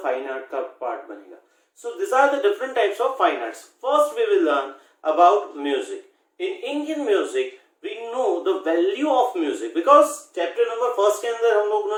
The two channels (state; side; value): identical; both; correlation 1.00